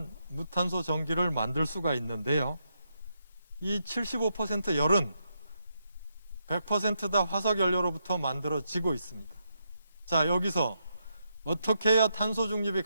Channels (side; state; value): both; inverted; correlation -0.81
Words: 무탄소 전기를 만들 수가 있는데요. 이 75% 열은 100% 다 화석연료로부터 만들어지고 있습니다. 자, 여기서 어떻게 해야 탄소 중립이